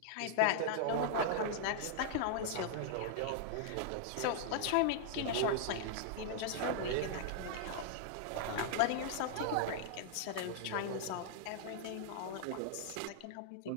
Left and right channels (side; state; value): both; different; correlation -0.01